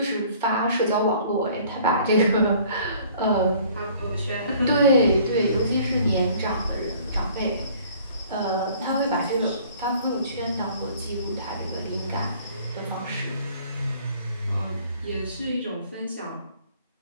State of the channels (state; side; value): inverted; both; correlation -0.54